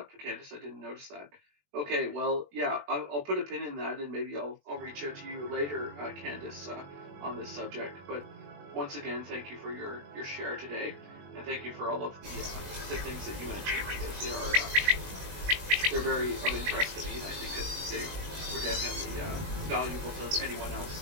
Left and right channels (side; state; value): left; late; 21 ms